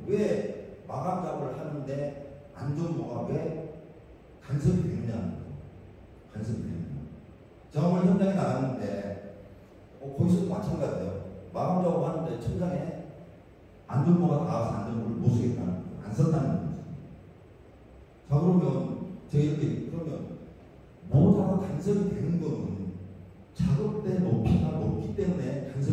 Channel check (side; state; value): both; identical; correlation 1.00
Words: 왜 마감 작업을 하는데 안전모가 왜 간섭이 되느냐는 거죠. 간섭이 되느냐. 제가 오늘 현장에 나갔는데 거기서도 마찬가지예요. 마감 작업하는데 천장에 안전모가 닿아서 안전모를 못 쓰겠다는 거죠. 안 썼다는 거죠. 자, 그러면 제가 이렇게 그러면 모자가 간섭이 되는 거는 작업대 높이가 높기 때문에